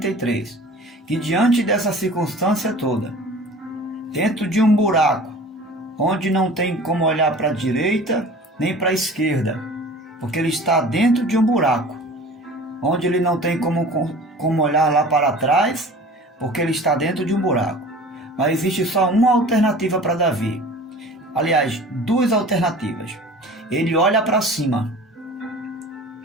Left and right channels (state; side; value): normal; both; correlation 0.42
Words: que diante dessa circunstância toda, dentro de um buraco, onde não tem como olhar para a direita nem para a esquerda, porque ele está dentro de um buraco, onde ele não tem como olhar lá para trás, porque ele está dentro de um buraco. Mas existe só uma alternativa para Davi. Aliás, duas alternativas. Ele olha para cima,